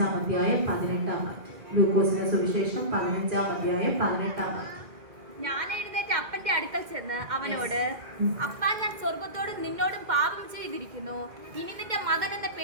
അധ്യായം 18-ാം വാക്യം. ലൂക്കോസിന്റെ സുവിശേഷം 15-ാം അധ്യായം 18-ാം വാക്യം. ഞാൻ എഴുന്നേറ്റ് അപ്പന്റെ അടുക്കൽ ചെന്ന് അവനോട്, അപ്പാ, ഞാൻ സ്വർഗത്തോടും നിന്നോടും പാപം ചെയ്തിരിക്കുന്നു. ഇനി നിന്റെ മകൻ എന്ന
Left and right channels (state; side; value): late; left; 2.1 ms